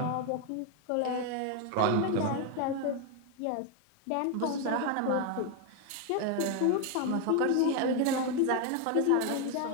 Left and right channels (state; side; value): different; both; correlation 0.01